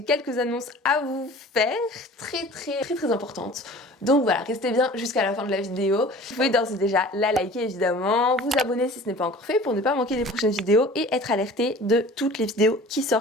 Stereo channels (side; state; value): both; normal; correlation 0.44